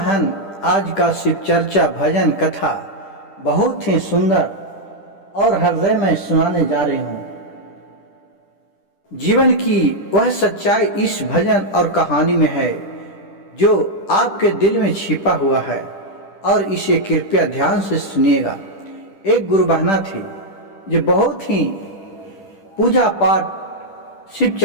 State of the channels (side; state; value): right; late; 10 ms